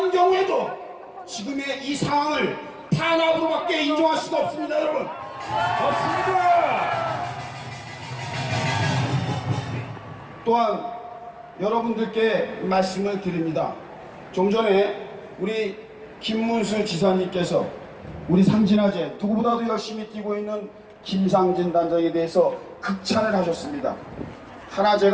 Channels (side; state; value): both; identical; correlation 1.00